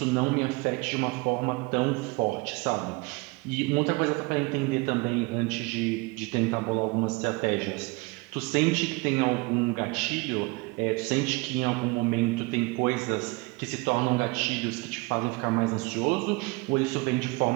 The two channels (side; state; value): left; quieter; 26.2 dB